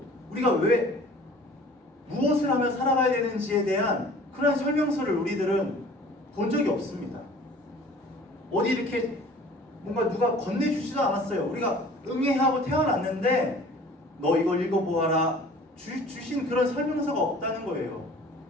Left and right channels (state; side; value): normal; both; correlation 0.48